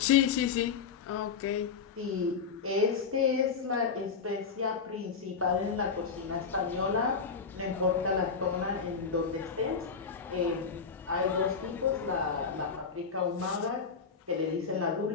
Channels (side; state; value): right; quieter; 5.7 dB